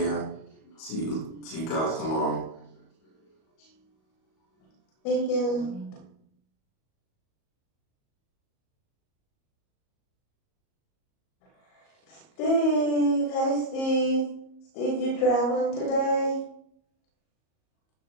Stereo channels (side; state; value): right; late; 37 ms